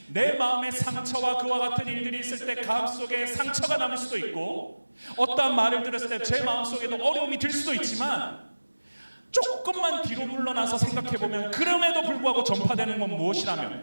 내 마음에 상처와 그와 같은 일들이 있을 때 가슴속에 상처가 남을 수도 있고 어떠한 말을 들었을 때 제 마음속에도 어려움이 들 수도 있지만 조금만 뒤로 물러나서 생각해보면 그럼에도 불구하고 전파되는 건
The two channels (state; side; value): inverted; both; correlation -1.00